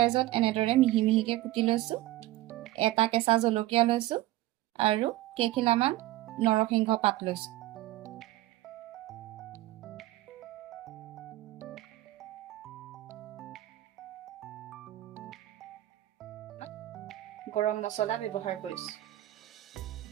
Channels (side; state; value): left; quieter; 16.1 dB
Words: এনেদৰে মিহি মিহিকে কুটি লৈছো এটা কেঁচা জলকীয়া লৈছো আৰু কেইখিলামান নৰসিংহ পাত লৈছো গৰম মছলা ব্যৱহাৰ কৰিছো